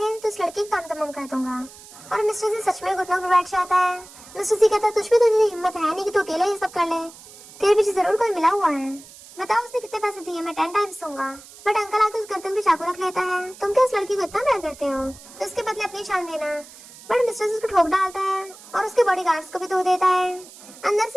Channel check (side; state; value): right; noise; hiss, 19 dB below the sound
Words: तो इस लड़की का काम तमाम कर दूंगा। और मिस्टर जी सच में घुटनों पर बैठ जाता है। मिस्टर जी कहता तुझ में तो इतनी हिम्मत है नहीं कि तू अकेला ये सब कर ले, तेरे पीछे जरूर कोई मिला हुआ है, बताओ उसने कितने पैसे दिए, मैं 10 टाइम्स दूंगा। बट अंकल आके उस गर्दन पे चाकू रख लेता है। तुम क्या उस लड़की को इतना प्यार करते हो तो उसके बदले अपनी जान देना। बट मिस्टर जी उसको ठोक डालता है और उसके बॉडीगार्ड्स को भी धो देता है। अंदर